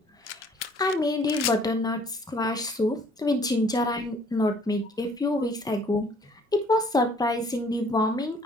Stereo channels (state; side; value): normal; both; correlation 0.58